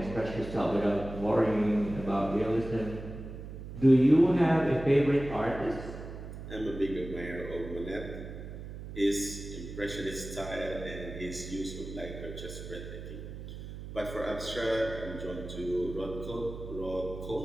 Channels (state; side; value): noise; right; hum, 10 dB below the sound